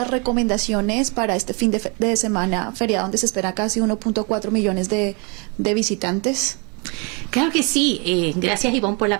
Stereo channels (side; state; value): left; quieter; 32.6 dB